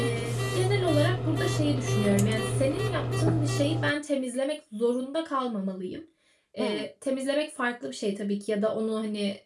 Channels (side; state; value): both; identical; correlation 1.00